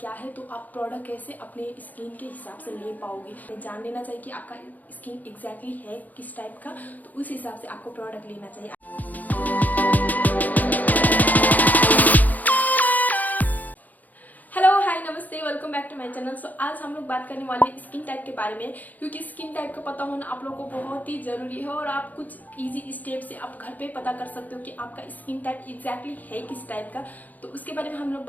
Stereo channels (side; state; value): right; late; 0.081 ms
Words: क्या है, तो आप प्रोडक्ट कैसे अपने स्किन के हिसाब से ले पाओगे। जान लेना चाहिए कि आपका स्किन एग्जैक्टली है किस टाइप का, तो उस हिसाब से आपको प्रोडक्ट लेना चाहिए। नमस्ते, welcome back to my channel. So आज हम लोग बात करने वाले हैं स्किन टाइप के बारे में, क्योंकि स्किन टाइप का पता होना आप लोगों को बहुत ही जरूरी है। और आप कुछ इजी स्टेप से आप घर पे पता कर सकते हो कि आपका स्किन टाइप एग्जैक्टली है किस टाइप का, तो उसके बारे में हम लोग